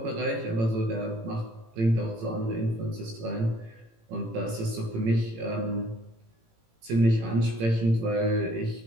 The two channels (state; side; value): late; left; 18 ms